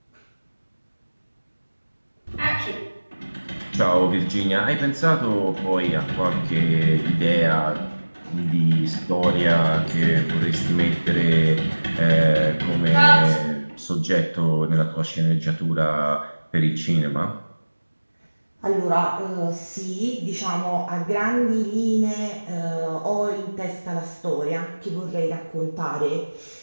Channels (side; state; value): both; inverted; correlation -1.00